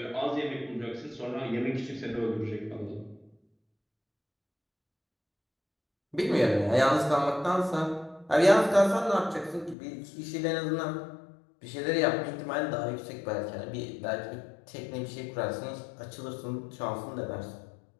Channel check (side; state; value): right; drops out; at 9.8 s